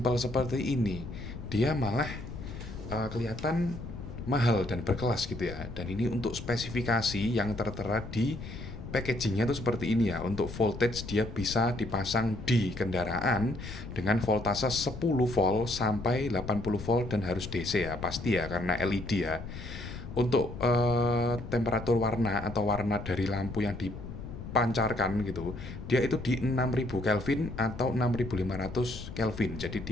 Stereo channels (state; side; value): noise; left; rumble, 10 dB below the sound